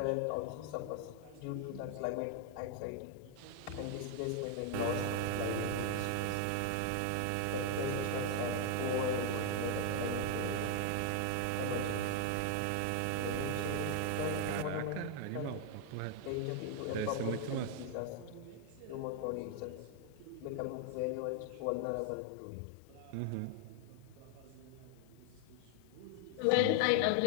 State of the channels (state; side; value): different; both; correlation 0.00